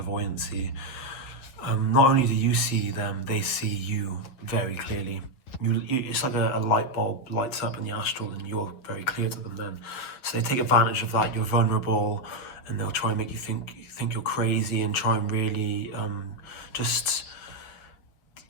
Not only do you see them, they see you very clearly. It's like a light bulb lights up in the astral and you're very clear to them then. So they take advantage of that. You're vulnerable and they'll try and make you think you're crazy and try and really just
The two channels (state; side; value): late; right; 7.9 ms